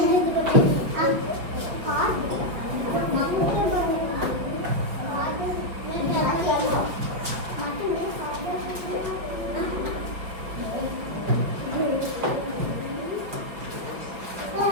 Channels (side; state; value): left; late; 5.3 ms